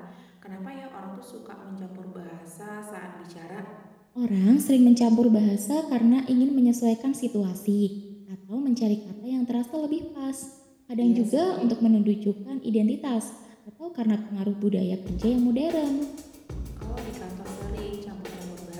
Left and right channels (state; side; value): identical; both; correlation 1.00